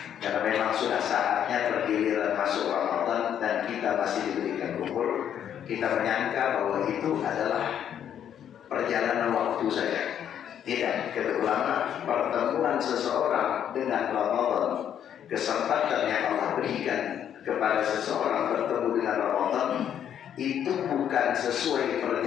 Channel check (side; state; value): right; quieter; 9.5 dB